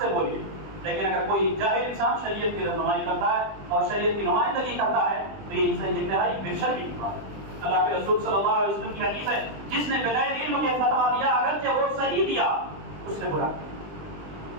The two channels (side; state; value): left; late; 20 ms